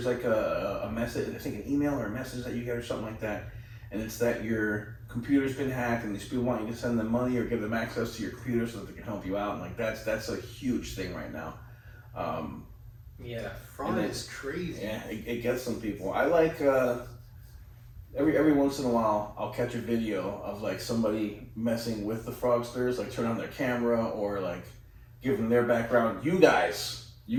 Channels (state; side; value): identical; both; correlation 1.00